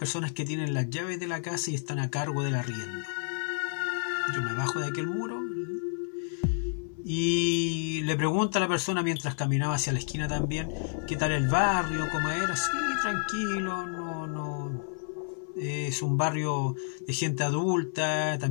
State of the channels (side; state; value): right; silent; 58 dB below the other